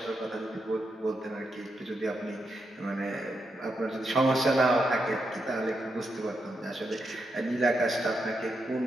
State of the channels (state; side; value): normal; both; correlation 0.84